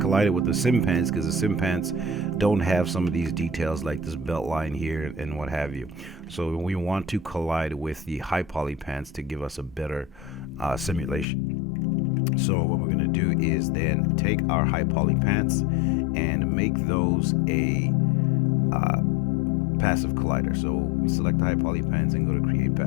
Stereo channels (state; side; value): drops out; right; at 11.2 s